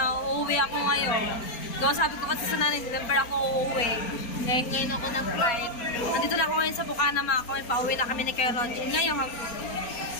uuwi ako ngayon. So sabi ko kasi sa nanay, December ako uuwi. Eh, ngayon ako ng flight. Nandito na ako ngayon sa Bukana mga kami, pauwi na kami ni Kuya Roger. Ngayon,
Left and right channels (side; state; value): right; late; 4.3 ms